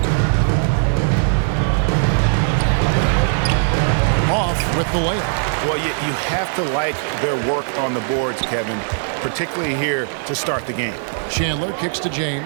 Off with the layup. Well, you have to like their work on the boards, Kevin, particularly here to start the game. Chandler kicks to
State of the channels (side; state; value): left; silent; 65 dB below the other